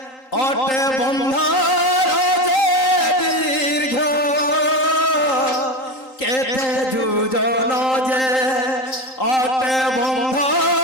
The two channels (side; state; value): right; late; 3.8 ms